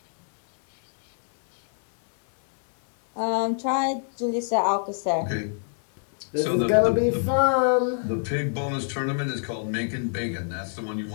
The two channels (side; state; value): right; silent; digital silence